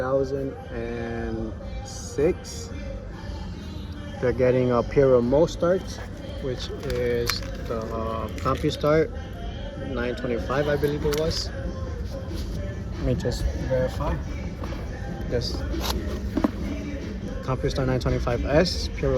They're getting a peripherals start, which is the CompuStart 925, I believe it was. Let me just verify. Yes. CompuStart 925S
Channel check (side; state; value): both; identical; correlation 1.00